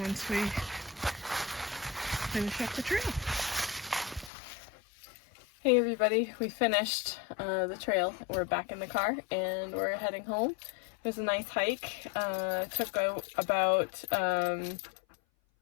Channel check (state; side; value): drops out; right; at 4.3 s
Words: once we finish up the trail. Hey everybody, we finished the trail. We're back in the car and we're heading home. It was a nice hike. It took about